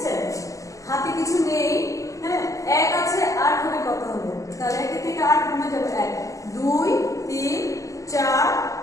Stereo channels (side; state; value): right; late; 0.16 ms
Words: হাতে কিছু নেই, হ্যাঁ, 1 আছে, 8 হবে কত হবে? তাহলে 1 থেকে 8 কমে যাবে 1, 2, 3, 4,